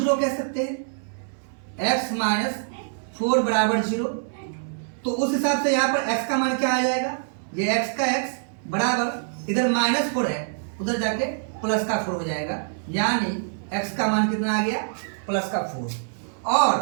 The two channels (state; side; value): silent; left; 62 dB below the other